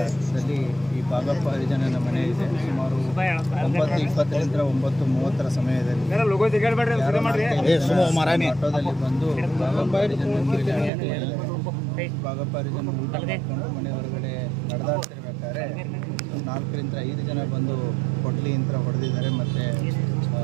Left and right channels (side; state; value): left; drops out; at 10.9 s